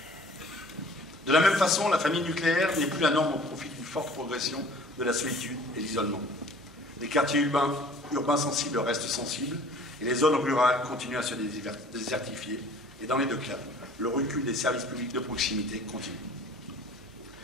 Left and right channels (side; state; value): both; normal; correlation 0.50